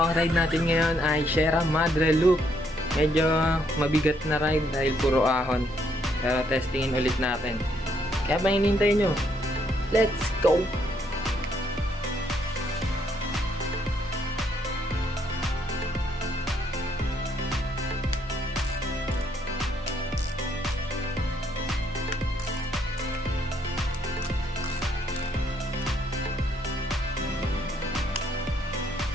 ride natin ngayon ay Sierra Madre Loop. Medyo mabigat na ride dahil puro ahon. Pero testingin ulit natin. Kaya pa hinintay nyo? Let's go!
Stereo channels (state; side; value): normal; both; correlation 0.71